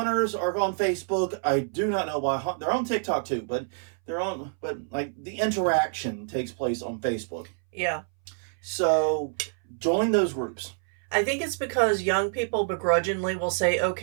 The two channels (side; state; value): left; silent; 60 dB below the other